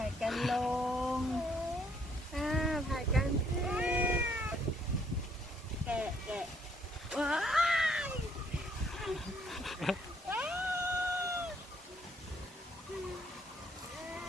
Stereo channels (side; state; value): both; normal; correlation 0.67